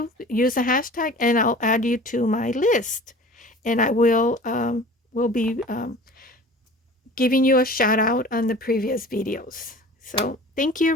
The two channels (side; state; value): both; normal; correlation 0.42